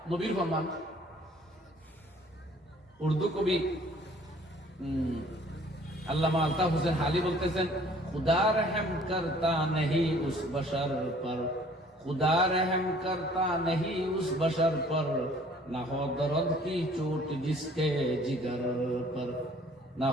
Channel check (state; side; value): normal; both; correlation 0.55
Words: নবীর ফরমান, উর্দু কবি আল্লামা আলতাফ হোসেন হালি বলতেছেন, খুদা রহম করতা नहीं उस बशर पर, खुदा रहम करता नहीं उस बशर पर, ना हो दर्द की चोट जिसके जिगर पर, ना